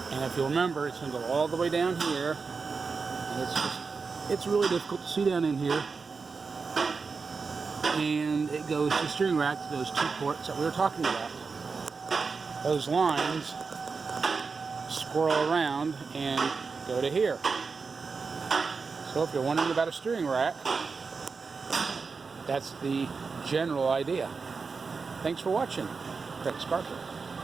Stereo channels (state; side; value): quieter; left; 4.8 dB